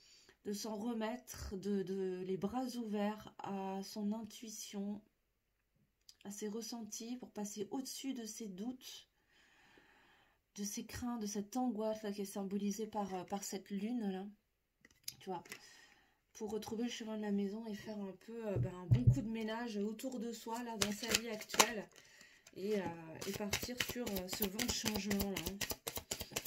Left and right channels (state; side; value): identical; both; correlation 1.00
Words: s'en remettre, de les bras ouverts à son intuition, à ses ressentis, pour passer au-dessus de ses doutes, de ses craintes, de cette angoisse là, qui est symbolisée par cette lune là, tu vois, pour retrouver le chemin de la maison et faire un peu un bon coup de ménage autour de soi là, dans sa vie actuelle, et partir sur ce vent de changement là. Hein.